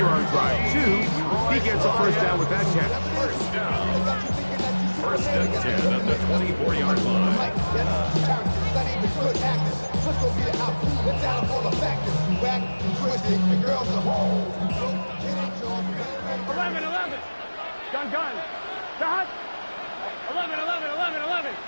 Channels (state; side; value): inverted; both; correlation -1.00